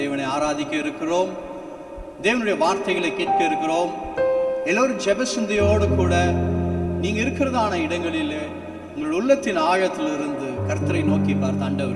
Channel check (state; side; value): identical; both; correlation 1.00